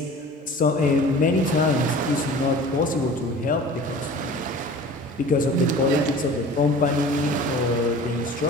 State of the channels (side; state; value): both; normal; correlation 0.42